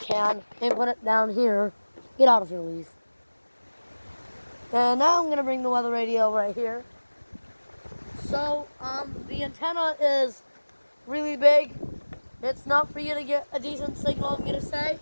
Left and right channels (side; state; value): both; inverted; correlation -1.00